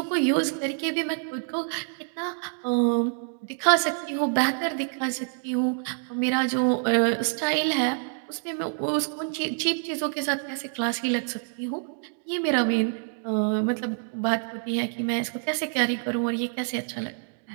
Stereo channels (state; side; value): silent; left; 60 dB below the other